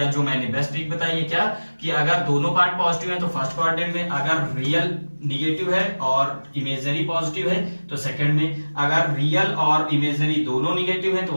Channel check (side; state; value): both; inverted; correlation -1.00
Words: जो मैंने बेस्ट ट्रिक बताई है क्या, कि अगर दोनों पार्ट पॉजिटिव है तो फर्स्ट क्वाड्रेंट में, अगर रियल निगेटिव है और इमेजिनरी पॉजिटिव है तो सेकंड में, अगर रियल और इमेजिनरी दोनों निगेटिव है तो